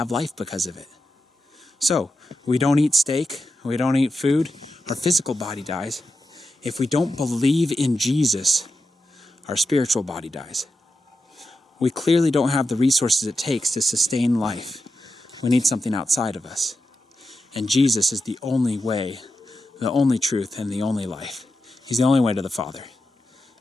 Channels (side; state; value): both; normal; correlation 0.90